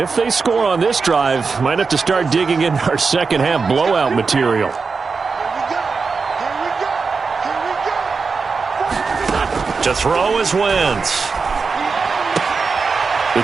they score on this drive, might have to start digging in our second half blowout material. To throw is Wentz. The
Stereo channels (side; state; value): left; quieter; 4.8 dB